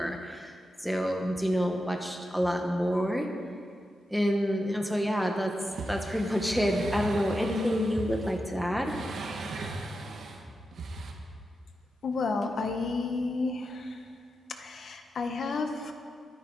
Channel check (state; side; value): normal; both; correlation 0.89